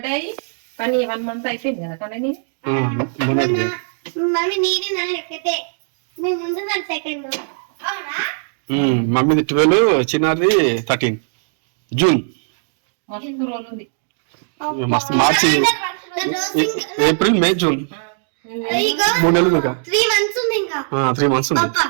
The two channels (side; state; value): left; silent; digital silence